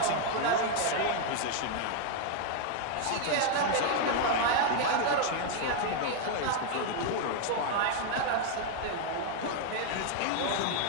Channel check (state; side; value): different; both; correlation 0.00